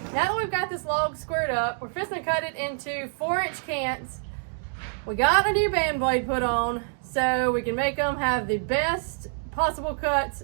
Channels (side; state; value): left; silent; digital silence